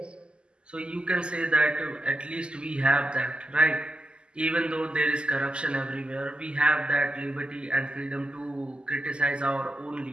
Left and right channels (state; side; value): late; left; 0.050 ms